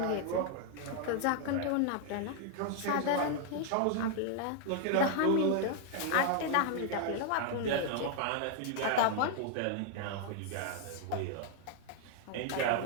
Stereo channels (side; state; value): both; different; correlation 0.00